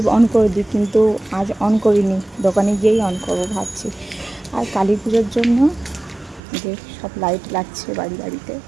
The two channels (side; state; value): left; drops out; at 6.4 s